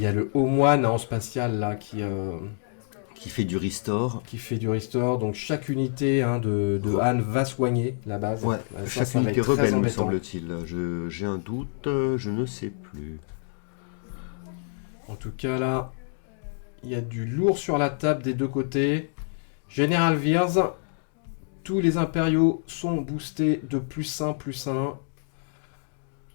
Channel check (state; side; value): silent; right; 60 dB below the other